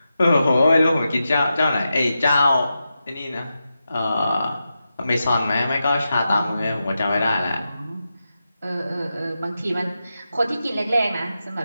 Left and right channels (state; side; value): inverted; both; correlation -0.89